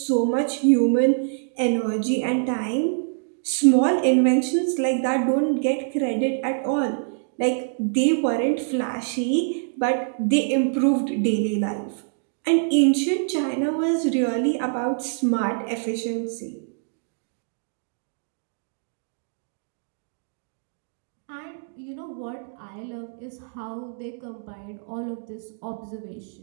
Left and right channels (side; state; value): left; silent; digital silence